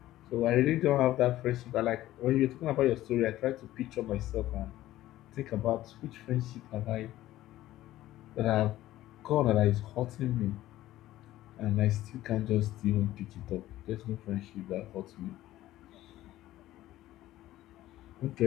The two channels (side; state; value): right; quieter; 15.0 dB